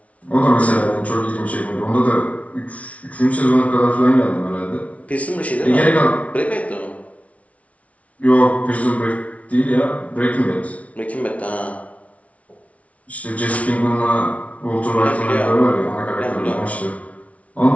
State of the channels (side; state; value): right; late; 0.066 ms